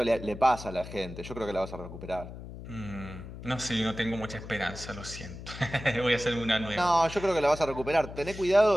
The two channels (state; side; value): noise; left; hum, 12 dB below the sound